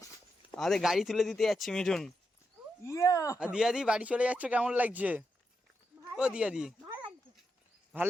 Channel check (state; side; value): normal; both; correlation 0.85